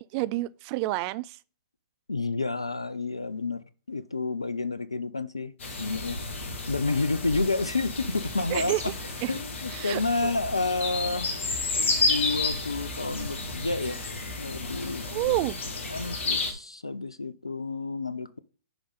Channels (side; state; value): both; inverted; correlation -0.52